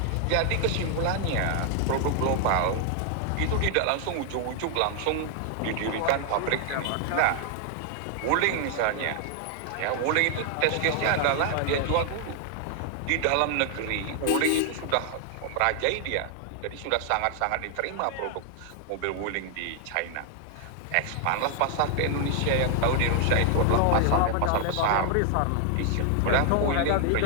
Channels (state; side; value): different; both; correlation 0.00